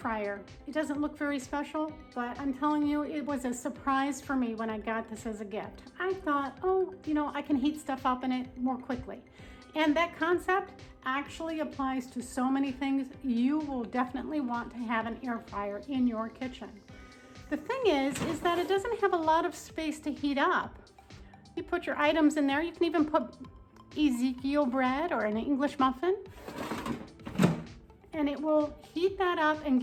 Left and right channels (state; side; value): identical; both; correlation 1.00